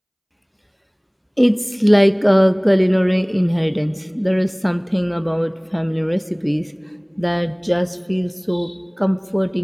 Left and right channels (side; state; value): both; identical; correlation 1.00